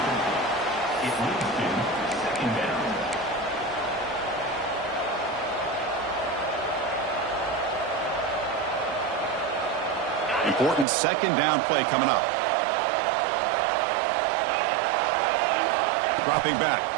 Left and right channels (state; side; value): drops out; left; at 10.9 s